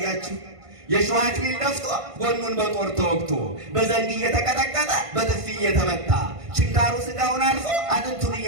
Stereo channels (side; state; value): left; late; 1.5 ms